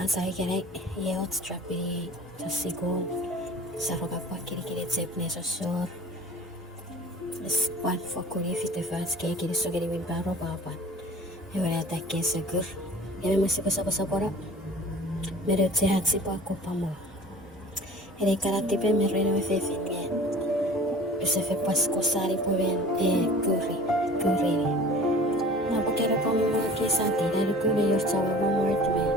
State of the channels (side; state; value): both; normal; correlation 0.44